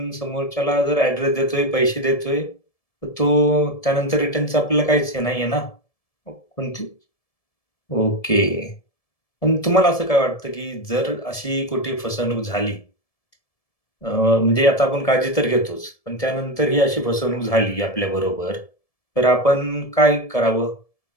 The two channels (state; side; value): late; right; 1.7 ms